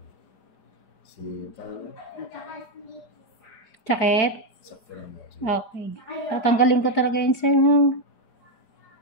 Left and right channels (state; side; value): late; right; 4.9 ms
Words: Sakit? Sakto naman. Okay. Tatanggalin ko talaga yun, sir, ha?